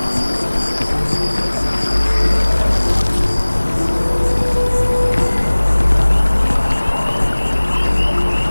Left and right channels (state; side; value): inverted; both; correlation -1.00